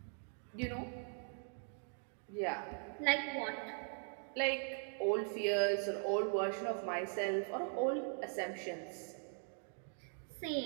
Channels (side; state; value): left; silent; 51 dB below the other